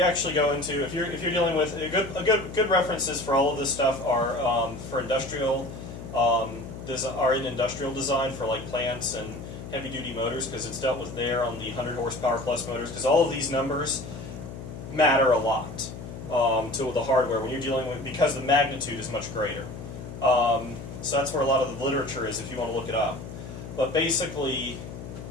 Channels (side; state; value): left; noise; hum, 11 dB below the sound